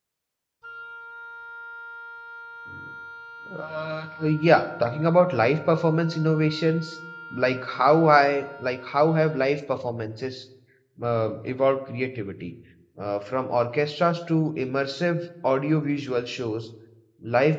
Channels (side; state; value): both; identical; correlation 1.00